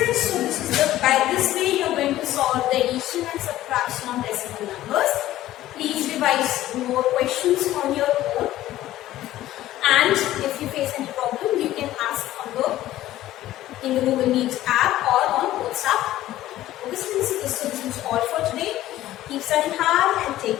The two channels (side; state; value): right; quieter; 14.5 dB